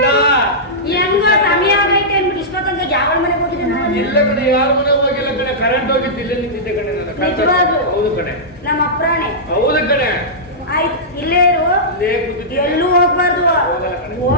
ಹೆಂಗೋ ಸಮಯ ಆಗೈತೆ ಅಂದ್ಬಿಟ್ಟು ಇಷ್ಟೊತ್ತಂಗ ಯಾವ ಮನೆಗೆ ಹೋಗಿದ್ದೆ ನಾನು? ಎಲ್ಲ ಕಡೆ ಯಾರ ಮನೆ ಹೋಗಿಲ್ಲ ಕಡೆ. ಕರೆಂಟ್ ಹೋಗಿತ್ತು, ಇಲ್ಲೇ ನಿಂತಿದ್ದೆ ಕಡೆ ನಾನು. ನಿಜವಾಗ್ಲೂ? ಹೌದು ಕಡೆ, ನಮ್ಮ ಅಪ್ರಾಣೆ ಹೌದು ಕಡೆ. ಆಯ್ತು ಇಲ್ಲೇ ಇರು, ಇಲ್ಲೇ ಕೂತಿದ್ದೆ. ಎಲ್ಲೂ ಹೋಗ್ಬಾರ್ದು. ಹೋಗಲ್ಲ ಕಣೆ.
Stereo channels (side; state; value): both; normal; correlation -0.13